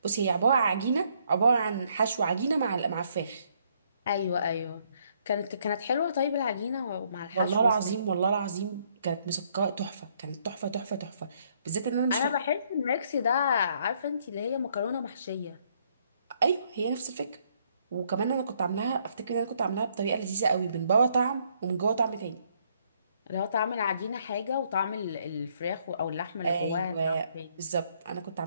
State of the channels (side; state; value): both; inverted; correlation -0.69